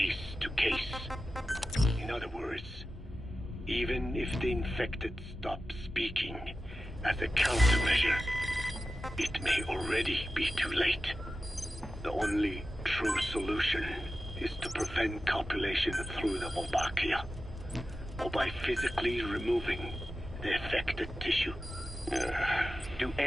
to case. In other words, even if the infected stop speaking as a countermeasure, it may already be too late. The only true solution is to prevent copulation through the Wolbachia, or by physically removing the affected tissue. Do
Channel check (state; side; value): normal; both; correlation 0.93